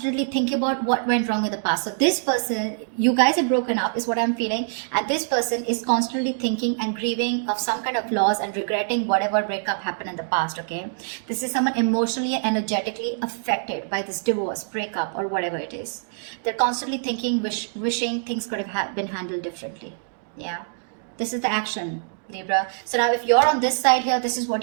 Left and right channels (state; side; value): silent; left; digital silence